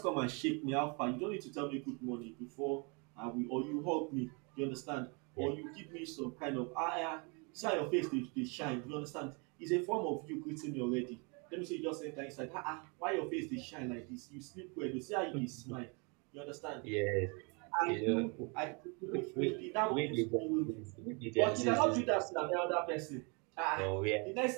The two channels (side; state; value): left; quieter; 32.8 dB